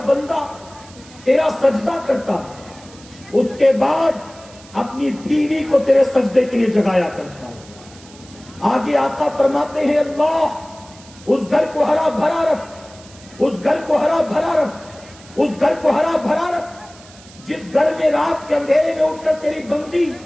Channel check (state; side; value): noise; right; hiss, 22 dB below the sound